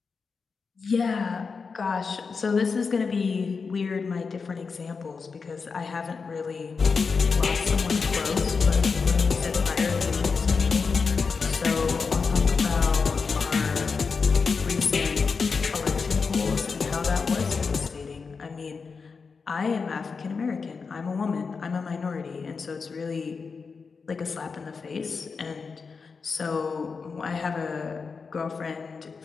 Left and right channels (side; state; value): right; quieter; 5.0 dB